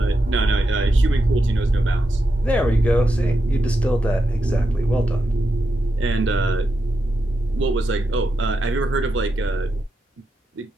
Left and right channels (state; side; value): normal; both; correlation 0.86